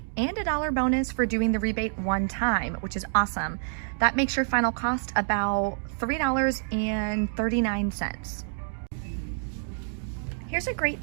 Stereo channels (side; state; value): left; silent; digital silence